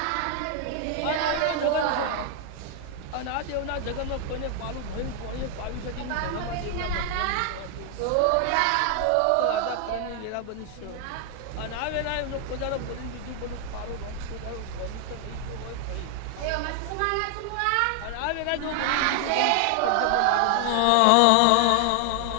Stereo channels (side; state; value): both; different; correlation 0.00